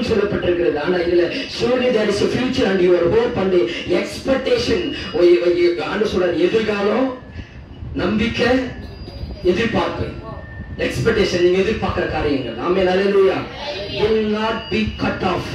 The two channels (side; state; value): both; identical; correlation 1.00